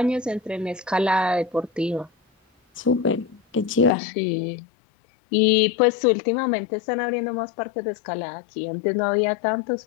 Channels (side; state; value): right; drops out; at 3.9 s